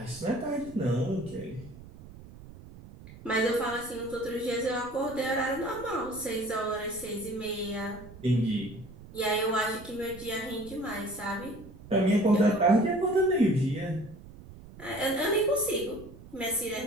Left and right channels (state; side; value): noise; right; rumble, 17 dB below the sound